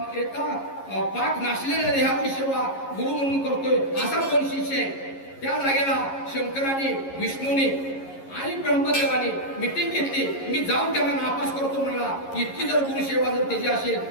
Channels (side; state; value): right; late; 11 ms